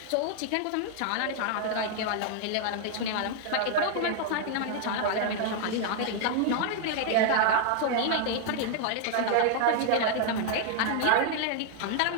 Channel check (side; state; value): both; different; correlation 0.00